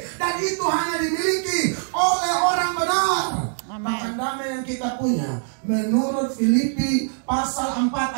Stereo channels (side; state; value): left; silent; 63 dB below the other